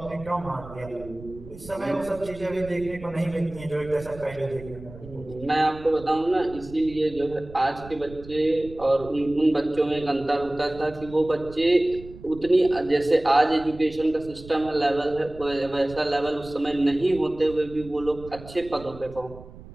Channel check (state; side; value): noise; right; rumble, 17 dB below the sound